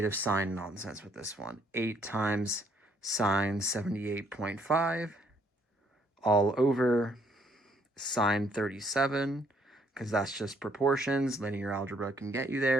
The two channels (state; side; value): normal; both; correlation 0.67